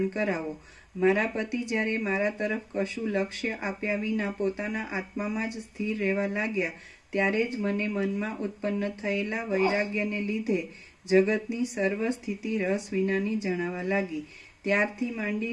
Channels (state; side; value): identical; both; correlation 1.00